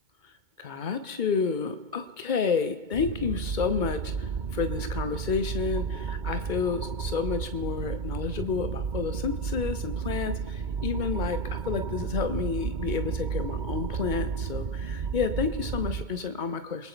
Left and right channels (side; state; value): left; late; 2.2 ms